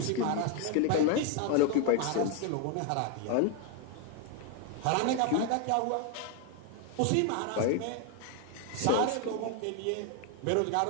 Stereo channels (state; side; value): different; both; correlation 0.01